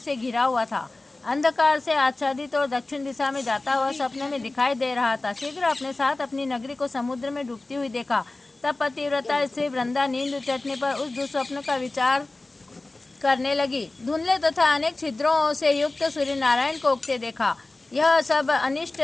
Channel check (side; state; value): right; quieter; 3.0 dB